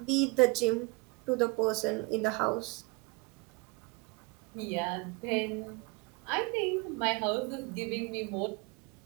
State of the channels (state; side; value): quieter; left; 26.9 dB